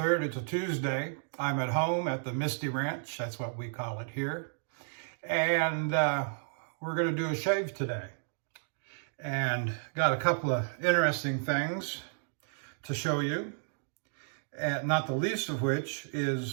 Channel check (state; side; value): silent; left; digital silence